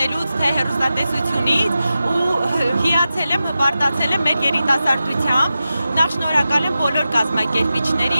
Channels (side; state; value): both; inverted; correlation -0.92